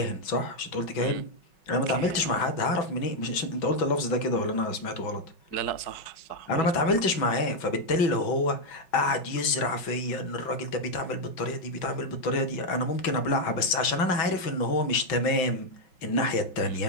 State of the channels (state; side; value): late; right; 5.4 ms